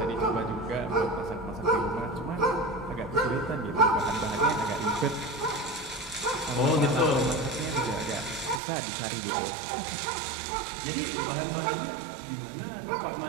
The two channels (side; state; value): left; drops out; at 8.6 s